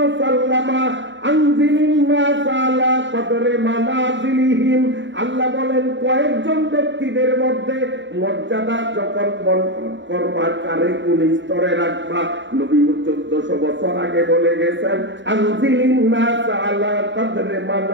انزل الناس على قدر منازلهم। আল্লাহ বলেন কয়েকজন ব্যক্তিদের মধ্যে মর্যাদা যখন বন্টন করবা কারে কোন স্তরে রাখবা, নবী 1400 বছর আগে বলে গেছেন আনজিলিন নাস আলা কদরে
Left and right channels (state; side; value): late; left; 0.54 ms